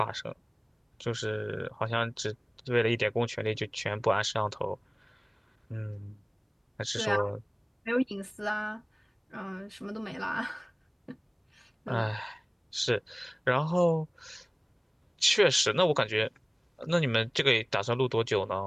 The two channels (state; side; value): identical; both; correlation 1.00